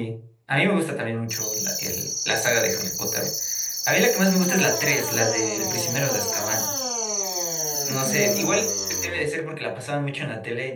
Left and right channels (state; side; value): identical; both; correlation 1.00